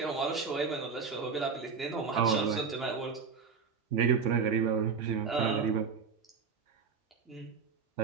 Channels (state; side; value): quieter; left; 5.6 dB